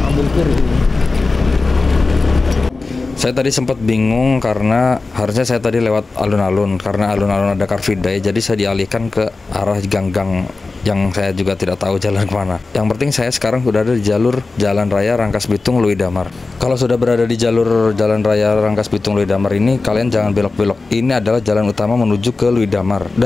Ambil kiri. Saya tadi sempat bingung karena harusnya saya tadi lewat alun-alun, karena alun-alun ada Car Free Day, jadi saya dialihkan ke arah gang-gang yang saya juga tidak tahu jalan kemana. Yang penting saya sekarang sudah ada di jalur Jalan Raya Rangkasbitung Lui Damar. Kalau sudah berada di jalur Jalan Raya Rangkasbitung Lui Damar ini, kalian jangan belok-belok. Ini adalah jalan utama menuju ke Lui Damar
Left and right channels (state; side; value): quieter; right; 3.7 dB